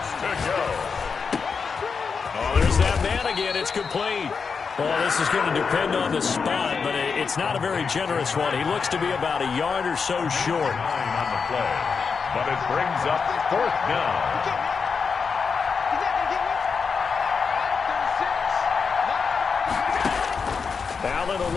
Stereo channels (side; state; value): right; quieter; 5.5 dB